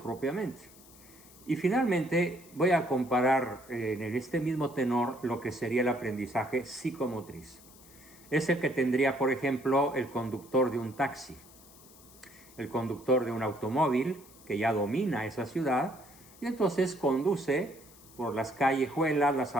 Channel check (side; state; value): left; noise; hiss, 23 dB below the sound